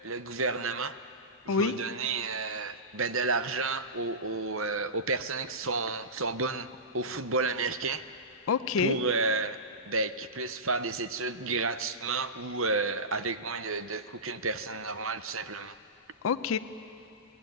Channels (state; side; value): normal; both; correlation -0.19